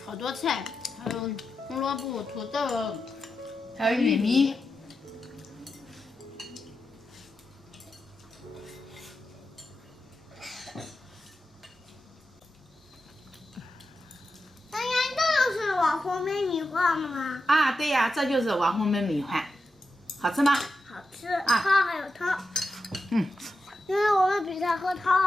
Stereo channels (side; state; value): both; normal; correlation 0.90